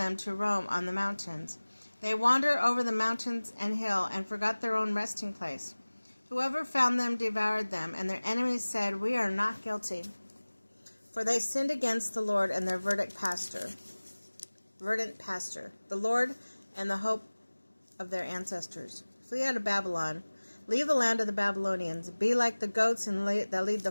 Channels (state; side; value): inverted; both; correlation -1.00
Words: to roam on the mountains. They wander over the mountains and hill and forgot their own resting place. Whoever found them devoured them, and their enemies said, We are not guilty. For they sinned against the Lord and their verdant pastor, the Lord and the hope of their ancestors. Flee out of Babylon. Leave the land of the Babylonians. Be like the goats that lead the